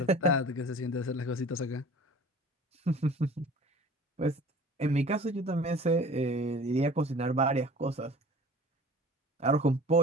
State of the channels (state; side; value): normal; both; correlation 0.45